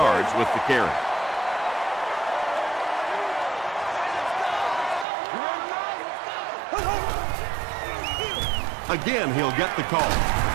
with the carry. Again, he'll get the call.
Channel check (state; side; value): drops out; left; at 5.1 s